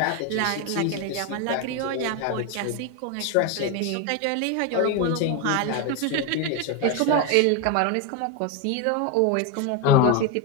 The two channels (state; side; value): different; both; correlation 0.02